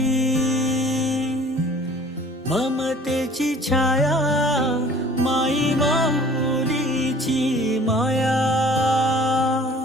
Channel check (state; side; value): normal; both; correlation 0.50